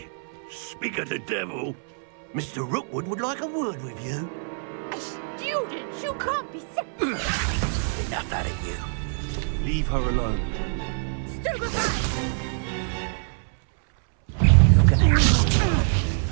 Speak of the devil. Mr. Rookwood would like a word with you. A student? You can't be serious. Enough out of you. Leave her alone. Stupefy! Look at her.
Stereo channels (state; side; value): silent; left; 62 dB below the other